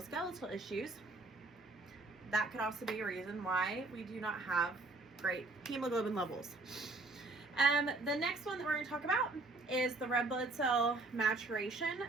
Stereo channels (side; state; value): left; quieter; 3.2 dB